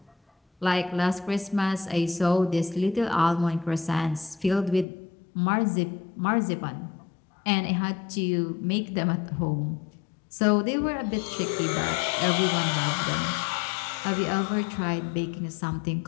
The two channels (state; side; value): drops out; right; at 4.9 s